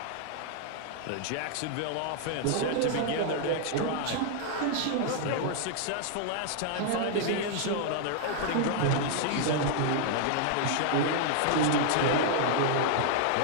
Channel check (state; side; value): different; both; correlation -0.01